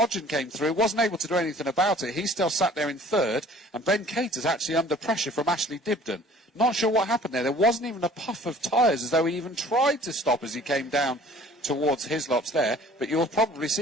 came through, wasn't able to do anything about it. He still sat there in 3rd, and Ben Cater's actually under pressure from Ashley Dibden. Not sure what happened there. There wasn't even a puff of tyres, as though he even tried to stop as he came down towards Hislops there. But you'll probably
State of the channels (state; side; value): normal; both; correlation 0.50